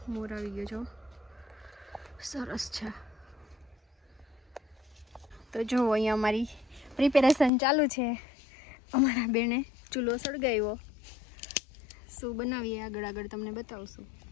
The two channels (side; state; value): right; drops out; at 7.5 s